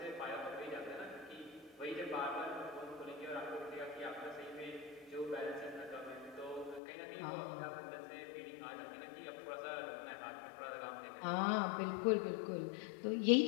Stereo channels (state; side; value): drops out; right; at 6.8 s